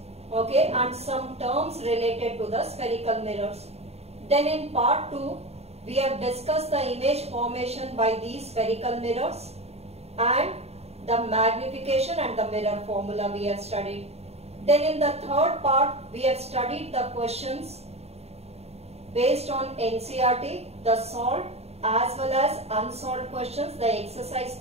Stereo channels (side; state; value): left; late; 0.30 ms